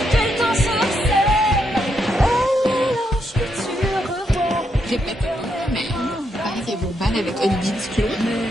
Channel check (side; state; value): both; normal; correlation 0.79